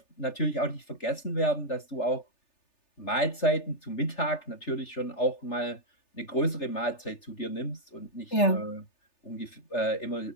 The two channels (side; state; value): right; late; 3.4 ms